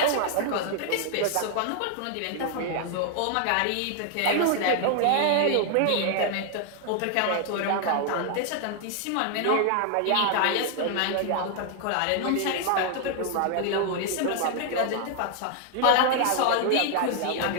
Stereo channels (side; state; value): both; different; correlation 0.00